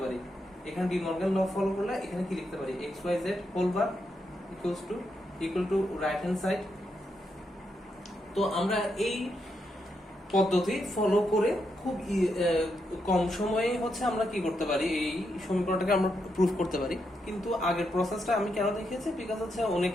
পারি। এখানে ডি মর্গান ল ফলো করলে এখানে কি লিখতে পারি, x y z whole bar equal to right hand side. তো আমরা এই পদ্ধতি ফলো করে খুব কম সময়ে হচ্ছে আমরা কি করতে পারি, এই সমীকরণটাকে আমরা প্রুফ করতে পারি। কিন্তু আগের প্রসেসটা আমি কেন দেখিয়েছি, বিকজ হচ্ছে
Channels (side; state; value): both; normal; correlation 0.82